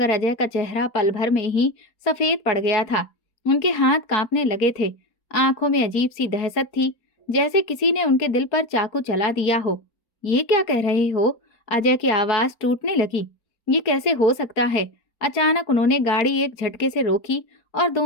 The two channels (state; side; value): late; right; 4.4 ms